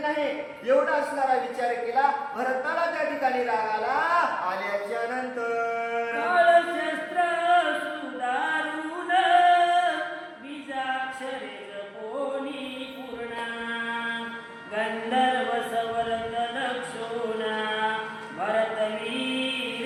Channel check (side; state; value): both; identical; correlation 1.00